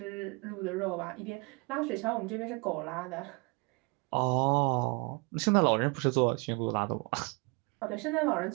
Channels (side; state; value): left; quieter; 30.3 dB